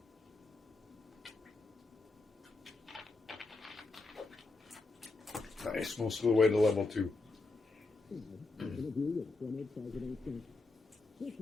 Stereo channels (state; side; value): quieter; right; 3.3 dB